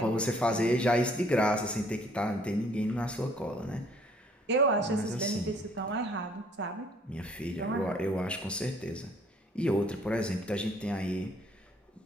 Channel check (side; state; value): both; normal; correlation 0.61